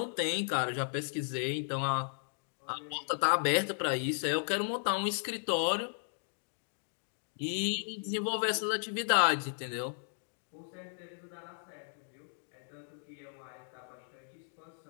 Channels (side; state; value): right; silent; digital silence